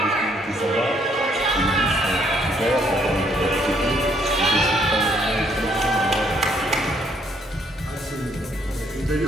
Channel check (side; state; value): both; normal; correlation 0.68